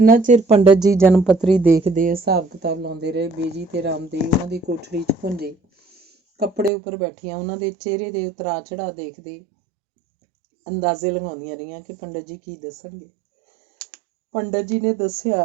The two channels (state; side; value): drops out; left; at 6.7 s